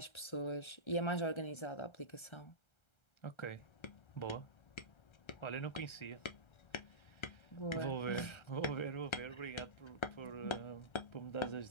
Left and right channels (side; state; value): right; late; 1.3 ms